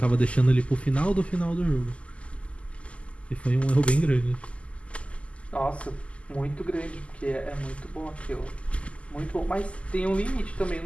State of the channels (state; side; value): late; right; 0.060 ms